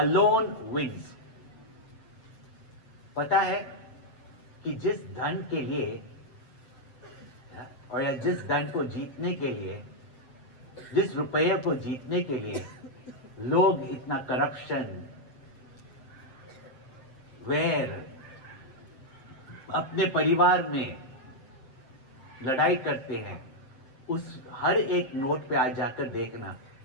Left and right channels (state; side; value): late; right; 7.6 ms